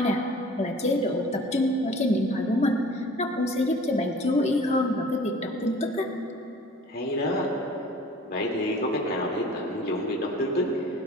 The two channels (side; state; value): both; normal; correlation 0.47